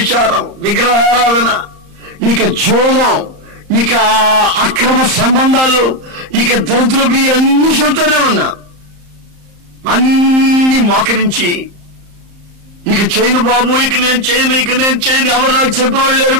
విగ్రహారాధన, ఇక జోగం, ఇక అక్రమ సంబంధాలు, ఇక దరిద్రపు అన్ని చెబుతూనే ఉన్నా. అన్ని మోకరించి ఇక చేయను బాబు, ఇక నేను చేయను, ఎవరు నాకు చెప్పేవాళ్ళు లేరు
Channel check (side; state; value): left; late; 34 ms